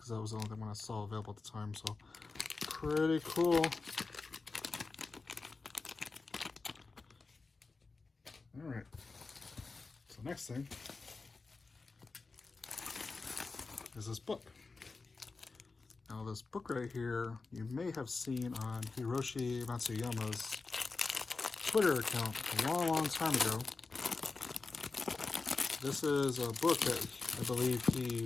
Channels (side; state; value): right; quieter; 4.0 dB